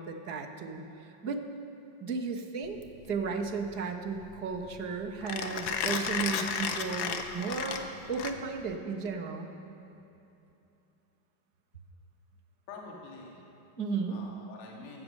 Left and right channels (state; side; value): late; right; 5.9 ms